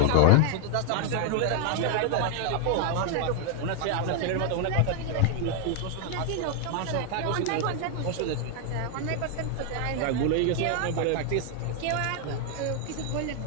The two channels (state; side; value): different; both; correlation 0.00